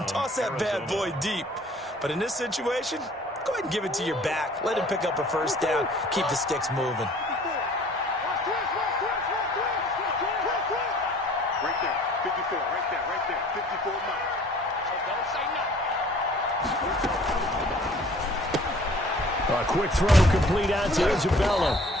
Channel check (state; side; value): normal; both; correlation 0.53